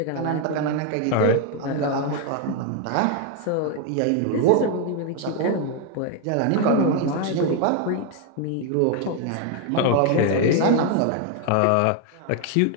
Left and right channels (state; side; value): different; both; correlation 0.01